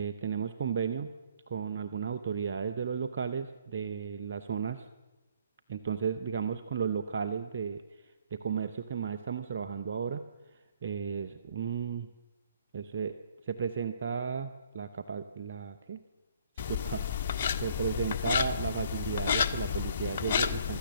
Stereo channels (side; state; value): both; inverted; correlation -0.60